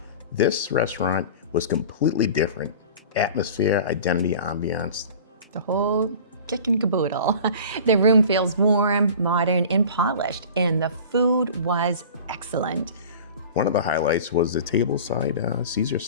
This restaurant was completely different. Atmosphere, identity, ambiance. The whole kit and caboodle. The room feels warm, modern, and polished, and the food was excellent. One of the highlights was the tableside Caesar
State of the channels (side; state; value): both; inverted; correlation -0.40